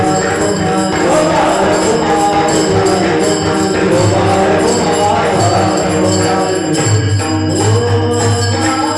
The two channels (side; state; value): both; identical; correlation 1.00